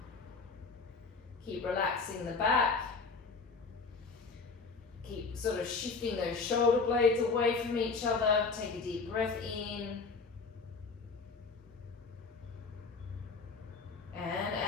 Keep relaxing the back. Keep sort of shifting those shoulder blades away from each other. Take a deep breath in. And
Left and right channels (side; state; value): right; quieter; 4.5 dB